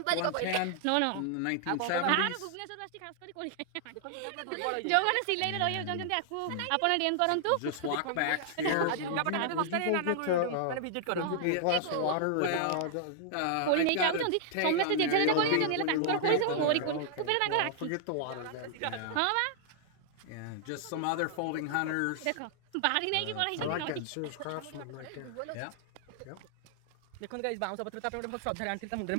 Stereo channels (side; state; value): both; different; correlation -0.01